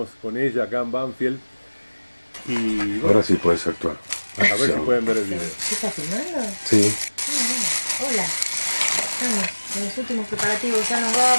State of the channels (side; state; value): both; inverted; correlation -1.00